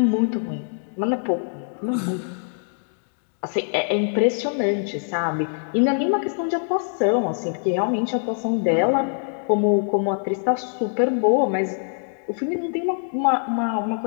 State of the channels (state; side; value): silent; right; digital silence